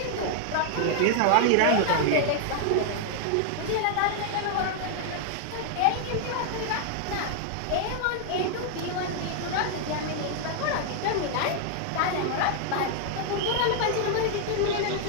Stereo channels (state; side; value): different; both; correlation -0.01